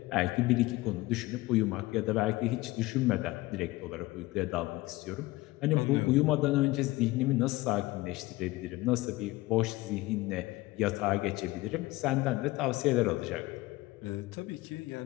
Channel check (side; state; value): right; quieter; 19.7 dB